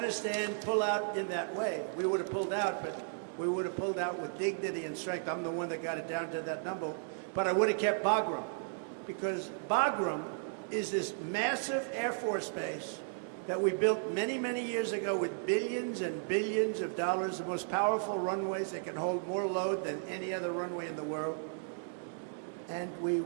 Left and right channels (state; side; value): silent; left; digital silence